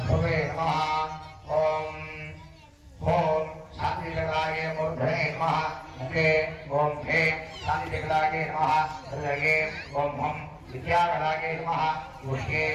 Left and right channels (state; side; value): identical; both; correlation 1.00